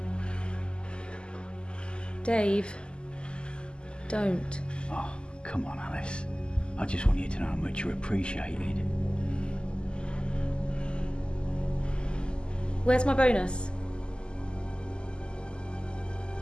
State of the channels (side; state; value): right; late; 0.049 ms